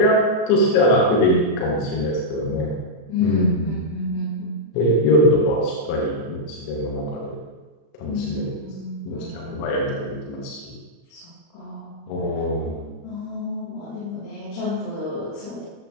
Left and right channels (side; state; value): right; late; 36 ms